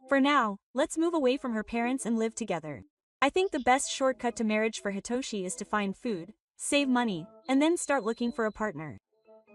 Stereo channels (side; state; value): both; identical; correlation 1.00